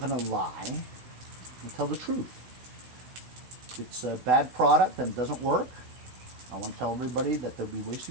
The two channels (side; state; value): left; late; 16 ms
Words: to lie and tell the truth. If it's a bad product and it doesn't work, I want to tell everybody that they'll be